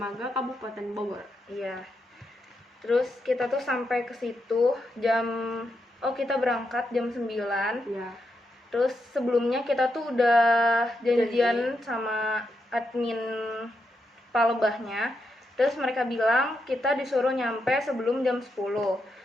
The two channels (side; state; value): both; normal; correlation 0.83